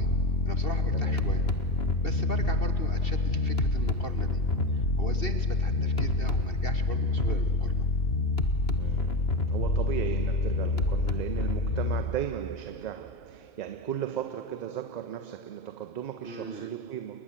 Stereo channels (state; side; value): late; right; 2.7 ms